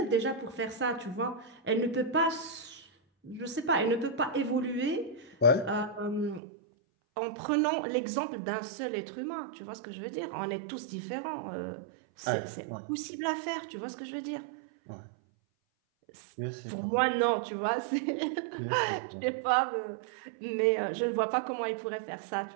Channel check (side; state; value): left; drops out; at 6.4 s